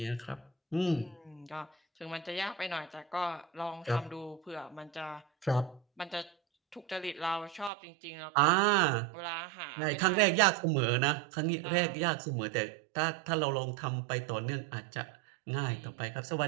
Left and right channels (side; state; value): left; drops out; at 7.7 s